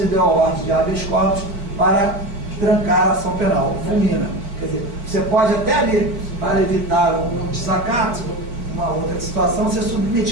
a ordem de habeas corpus para trancar a ação penal, fulmina. Quer dizer, você pode até ali, para evitar um desacato, uma outra situação, ser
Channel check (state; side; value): late; left; 4.4 ms